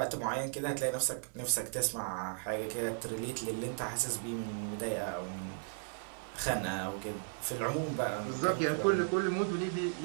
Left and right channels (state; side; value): silent; left; 54 dB below the other